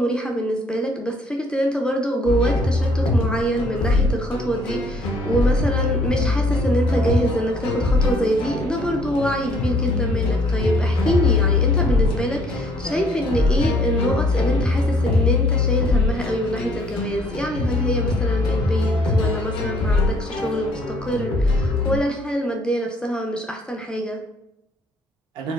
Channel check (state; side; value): normal; both; correlation 0.62